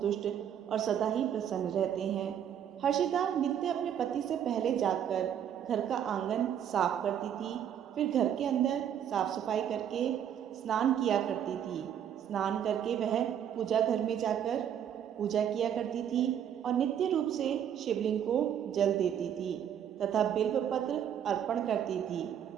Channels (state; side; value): quieter; left; 9.4 dB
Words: और सदा ही प्रसन्न रहते हैं। हर्षिता नित्य अपने पति से पहले जाकर घर का आंगन साफ करती थी, फिर घर के अंदर साफ सफाई करके स्नान किया करती थी। स्नान करके वह पूजा घर में जाकर पूजा किया करती थी और नित्य रूप से शिवलिंग को जल देती थी तथा बिल्व पत्र अर्पण करती थी।